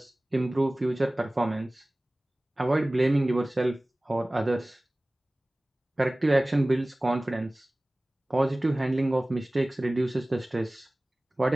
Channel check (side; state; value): both; normal; correlation 0.98